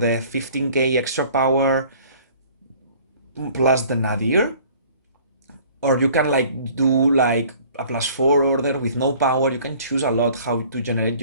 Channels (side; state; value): both; inverted; correlation -0.52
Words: 15k extra power plus the Nadir. Or you can like do like a +4 order with no power. You can choose a lot how to generate